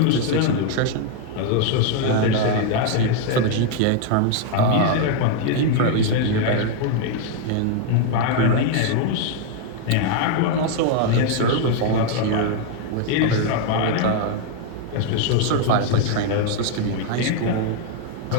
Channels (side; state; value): both; different; correlation 0.00